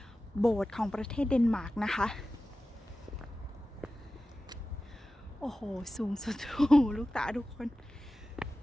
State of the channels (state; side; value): normal; both; correlation 0.95